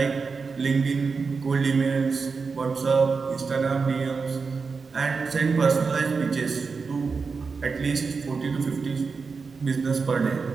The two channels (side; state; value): left; quieter; 4.9 dB